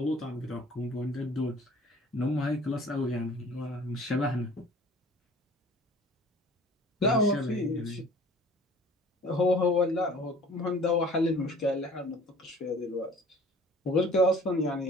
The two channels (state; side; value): normal; both; correlation 0.49